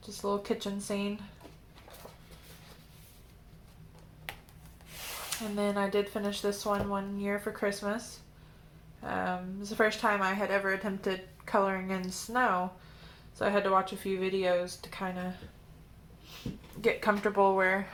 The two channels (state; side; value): identical; both; correlation 1.00